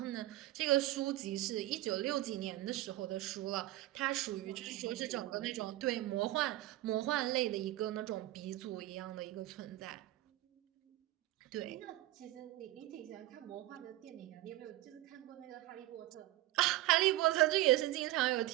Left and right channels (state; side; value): quieter; left; 16.4 dB